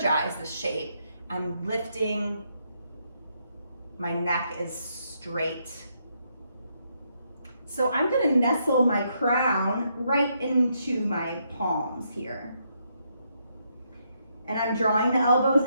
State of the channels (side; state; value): both; inverted; correlation -0.77